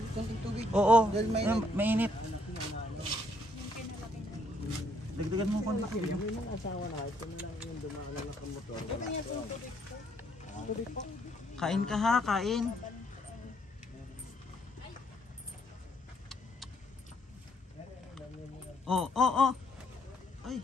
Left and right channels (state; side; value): normal; both; correlation 0.69